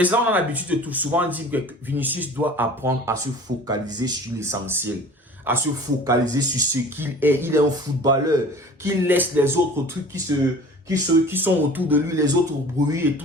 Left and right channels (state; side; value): normal; both; correlation 0.44